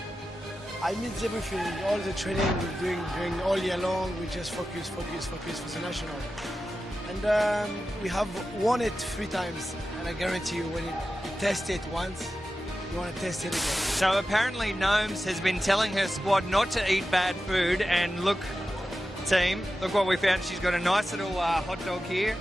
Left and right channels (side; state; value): both; normal; correlation 0.92